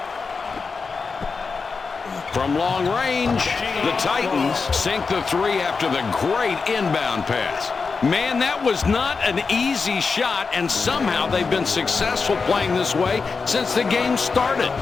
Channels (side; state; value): right; quieter; 4.8 dB